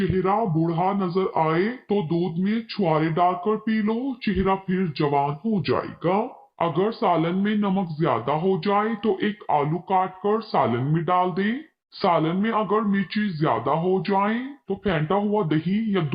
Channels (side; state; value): both; identical; correlation 1.00